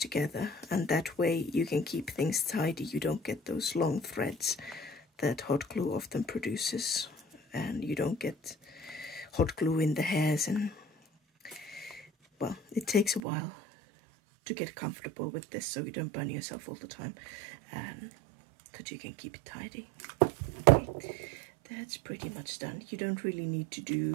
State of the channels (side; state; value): left; drops out; at 13.2 s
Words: And that way you can keep things tidy. You don't get those long threads that hot glue often produces. And you don't get hot glue in the hairs. And, well, it takes a while to get comfortable with this so you don't burn yourself all the time. That you can keep it tidy. Okay, that's pretty much done. You don't really need to